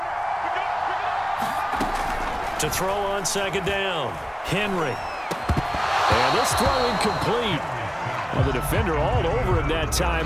To throw on second down, Henry. And this throw incomplete. Well, the defender all over him that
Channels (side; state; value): both; identical; correlation 1.00